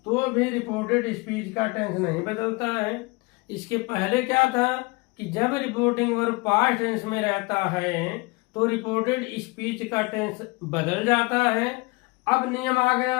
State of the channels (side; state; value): right; quieter; 26.2 dB